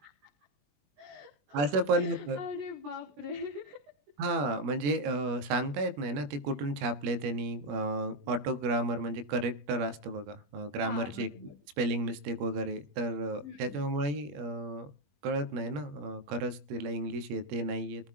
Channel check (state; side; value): late; left; 21 ms